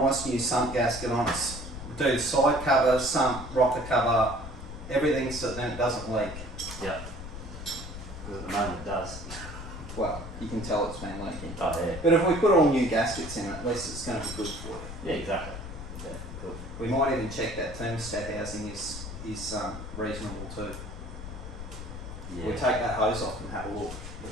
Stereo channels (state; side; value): noise; left; rumble, 10 dB below the sound